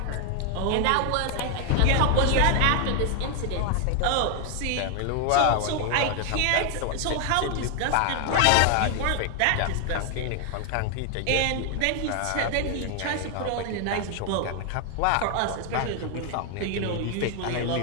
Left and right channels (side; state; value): both; different; correlation 0.00